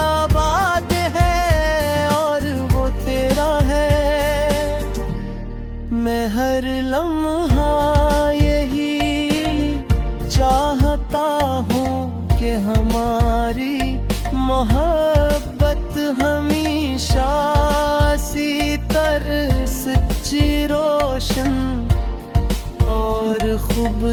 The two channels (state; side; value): identical; both; correlation 1.00